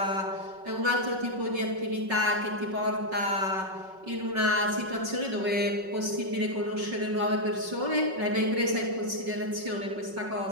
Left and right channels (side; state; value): left; late; 5.4 ms